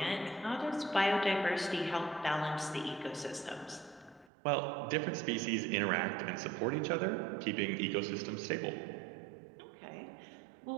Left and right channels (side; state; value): left; drops out; at 4.3 s